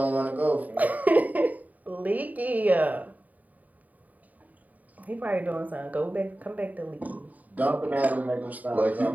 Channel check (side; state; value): left; late; 0.075 ms